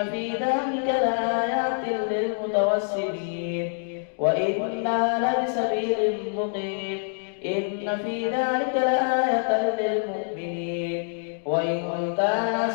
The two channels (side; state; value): right; silent; digital silence